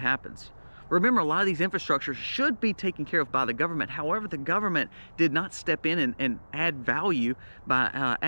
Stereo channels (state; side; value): inverted; both; correlation -1.00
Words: happens? Remember, a lot of these infrastructures should be taken care of by the government. However, the government did not step in and add value by